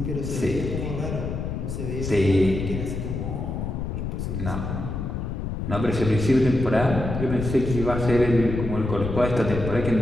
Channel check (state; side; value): noise; left; rumble, 4 dB below the sound